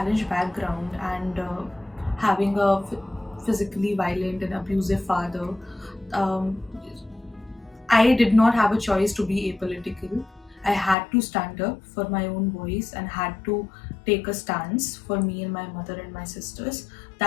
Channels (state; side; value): drops out; right; at 11.0 s